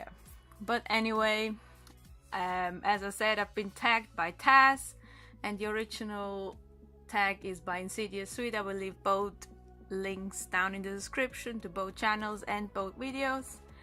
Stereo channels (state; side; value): identical; both; correlation 1.00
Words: But anyway, as I said, I've been tagged by Tazz, and the original tag is by InsidiousSwede. I will leave both links down in the description to both channels and both videos,